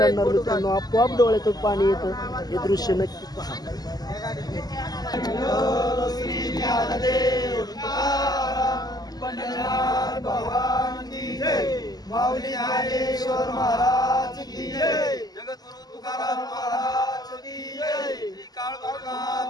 मित्रांनो आपोआप डोळ्यातून पाणी येतं. हे दृश्य नक्की पहा. माऊली ज्ञानेश्वर महाराज की जय, जगद्गुरु तुकाराम महाराज की जय, श्री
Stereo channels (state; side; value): late; right; 0.19 ms